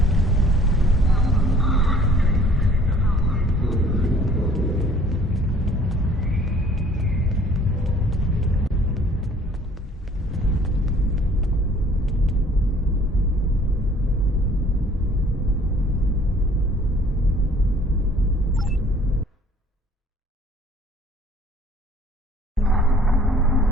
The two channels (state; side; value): normal; both; correlation 0.55